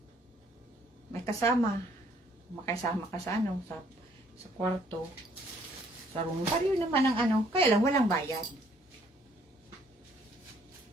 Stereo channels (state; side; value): normal; both; correlation 0.64